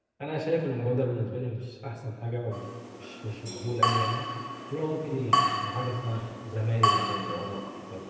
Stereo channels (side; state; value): both; identical; correlation 1.00